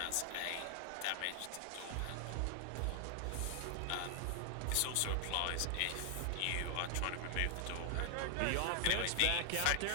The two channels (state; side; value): different; both; correlation 0.00